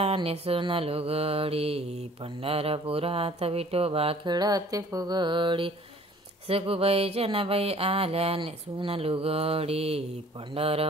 नेसून लुगडी, पंढरपुरात विठोबा खेळते फुगडी, सखूबाई जनाबाई आल्या नेसून लुगडी,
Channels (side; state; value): both; normal; correlation 0.52